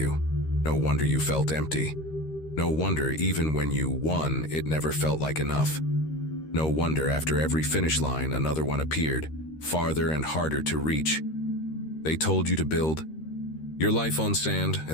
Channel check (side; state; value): right; late; 13 ms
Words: No wonder you felt empty. No wonder even when you won, it never felt like enough. No wonder after every finish line, another one appeared, farther and harder to reach. They told you to build your life on sand